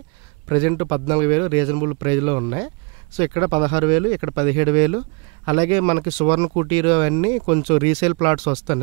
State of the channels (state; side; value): quieter; left; 31.8 dB